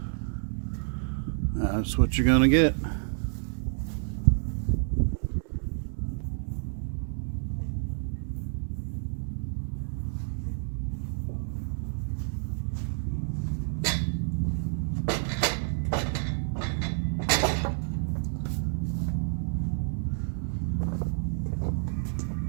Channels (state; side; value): silent; left; digital silence